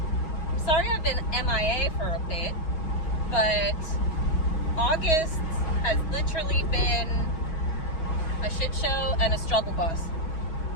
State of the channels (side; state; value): right; late; 6.2 ms